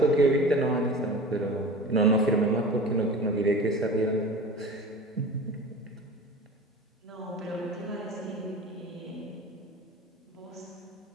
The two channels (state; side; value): normal; both; correlation 0.35